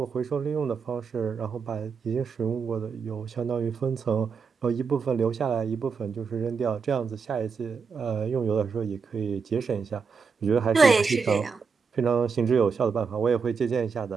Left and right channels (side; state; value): left; quieter; 5.5 dB